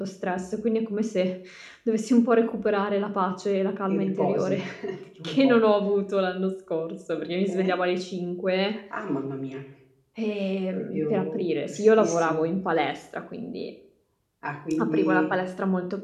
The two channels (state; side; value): identical; both; correlation 1.00